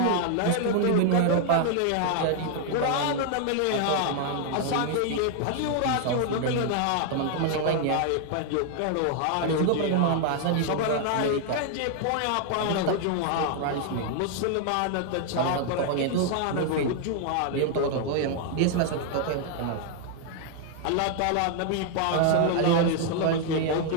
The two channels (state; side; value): different; both; correlation 0.00